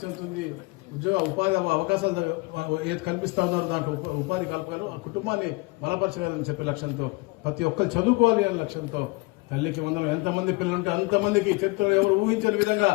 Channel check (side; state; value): right; quieter; 25.2 dB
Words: చెందుతుంది. ఉద్యోగ ఉపాధి అవకాశాలు ఏది కల్పిస్తా ఉన్నారో దాంట్లో ఉపాధి కల్పగలరు, ఆ కుటుంబాన్ని బలపరచగలని చెప్పే లక్ష్యంతో ప్రతి ఒక్కరు చదువుకోవాలి అనే లక్ష్యంతో తల్లికి వందనం. ఎంతమంది పిల్లలు ఉంటే అంతమందికి చరిత్రలో ఎవరు ఊహించని విధంగా